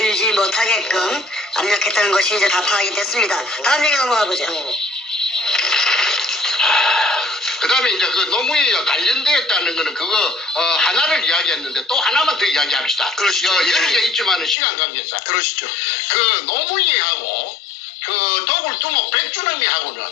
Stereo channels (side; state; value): right; drops out; at 14.6 s